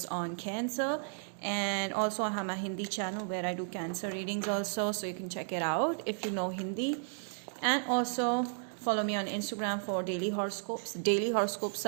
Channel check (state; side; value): silent; left; digital silence